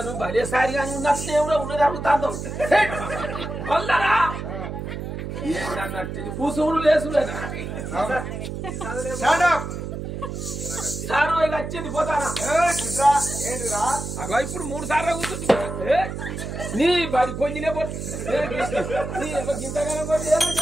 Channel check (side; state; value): right; noise; hum, 6 dB below the sound